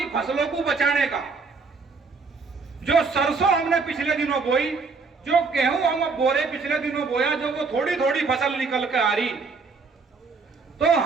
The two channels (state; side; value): quieter; left; 4.5 dB